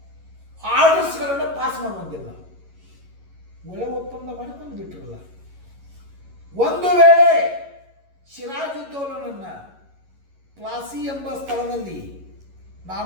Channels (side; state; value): left; late; 11 ms